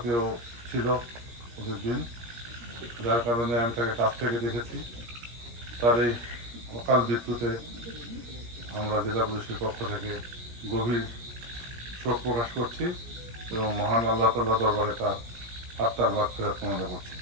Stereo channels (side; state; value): left; late; 17 ms